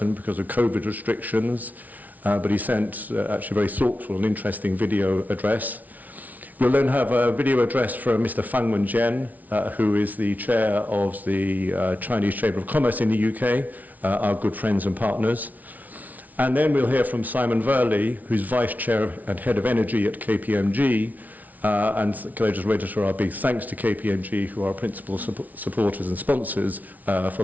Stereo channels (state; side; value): late; left; 0.076 ms